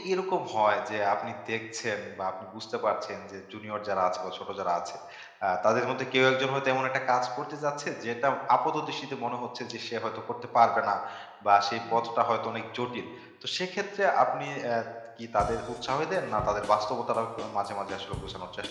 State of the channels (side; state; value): both; identical; correlation 1.00